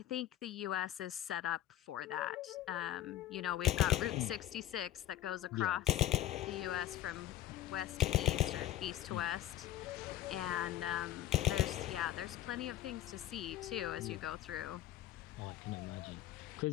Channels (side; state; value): right; quieter; 13.4 dB